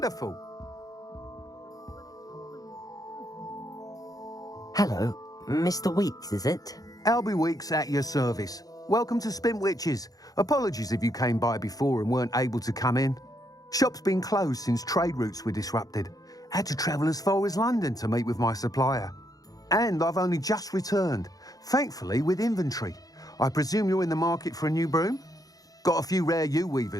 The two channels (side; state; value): right; late; 0.18 ms